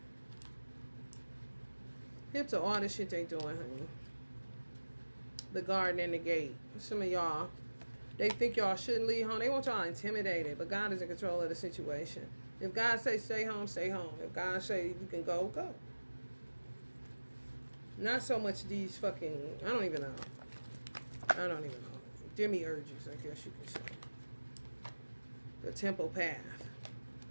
Hip to all the shit they doing, honey. The garden and the gate. Some of y'all, they think y'all shouldn't leave home. They want y'all intimidated, but God is in control of the situation. If God say stay home, stay home. If God say you can go, go. Not so much these fucking, I don't even know. Demiurges, I guess you could say. The temple path.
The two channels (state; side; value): inverted; both; correlation -1.00